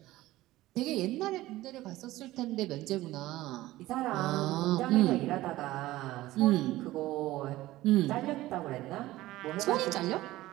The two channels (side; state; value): left; quieter; 16.8 dB